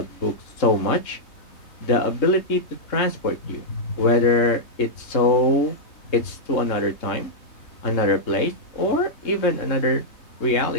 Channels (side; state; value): right; late; 3.7 ms